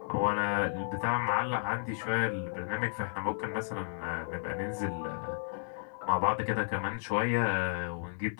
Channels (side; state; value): right; silent; digital silence